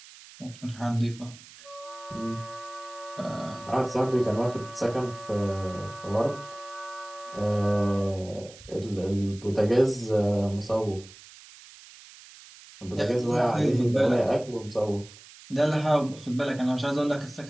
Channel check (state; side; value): noise; right; hiss, 20 dB below the sound